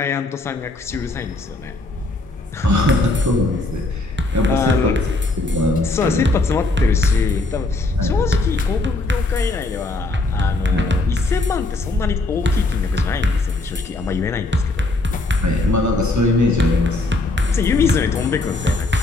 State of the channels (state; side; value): quieter; right; 3.0 dB